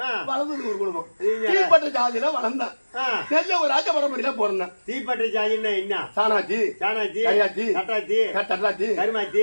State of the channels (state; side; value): inverted; both; correlation -1.00